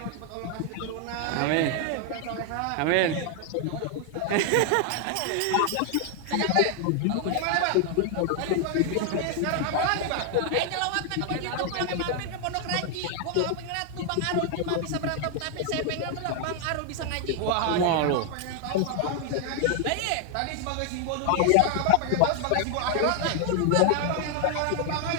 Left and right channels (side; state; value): both; different; correlation 0.00